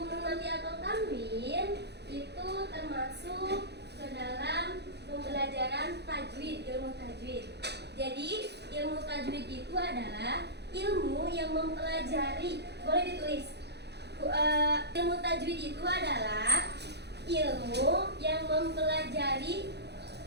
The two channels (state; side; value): late; left; 0.49 ms